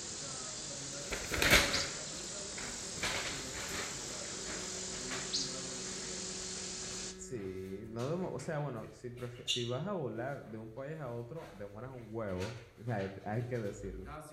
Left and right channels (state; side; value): identical; both; correlation 1.00